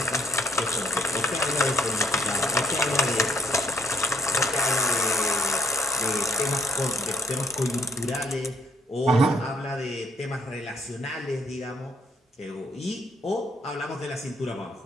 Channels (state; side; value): normal; both; correlation 0.68